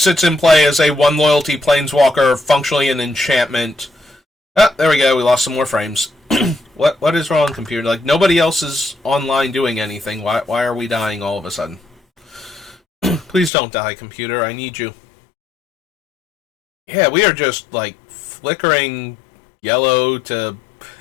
in play as a 1 loyalty planeswalker, functionally an enchantment. Ah, there we go. We lost some more frames. What is wrong, computer? Like, nobody else is online doing anything. Why are we dying all of a sudden? Please don't die, computer. I need you. Yeah, we are just, like, flickering yellow to...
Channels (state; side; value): drops out; right; at 13.5 s